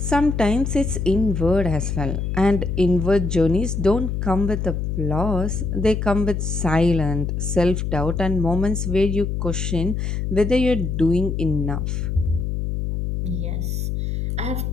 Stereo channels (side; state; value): left; noise; hum, 2 dB below the sound